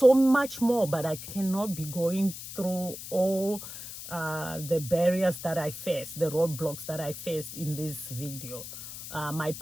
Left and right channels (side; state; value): left; noise; hiss, 11 dB below the sound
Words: much more, but I cannot be going through all the barriers that I faced, the roadblocks that I faced in this video. My